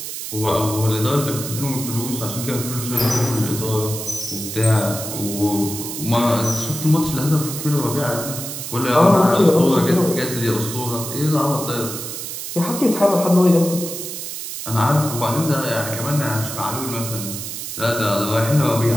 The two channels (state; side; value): noise; right; hiss, 7 dB below the sound